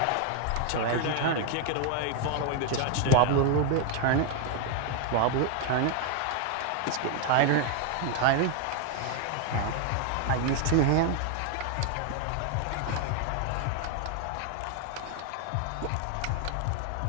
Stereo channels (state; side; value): different; both; correlation 0.00